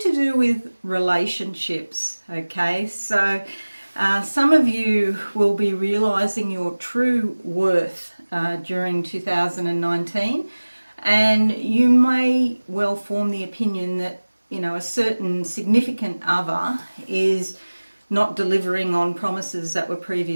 do with relationships, okay? So some of you will be realizing your true worth during 2019, and you may well form the opinion that, you know, a certain significant other is not delivering on promises that were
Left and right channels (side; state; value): both; inverted; correlation -1.00